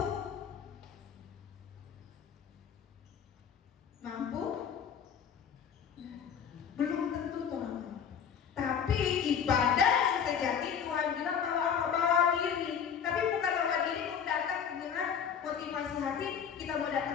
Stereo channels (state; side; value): quieter; right; 7.6 dB